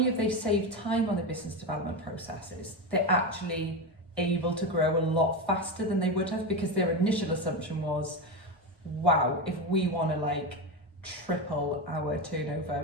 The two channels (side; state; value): both; normal; correlation 0.16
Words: have they saved time on the business development processes, they're actually able to grow a lot faster than they would have, because their initial assumption was, wow, if we want to triple our turnover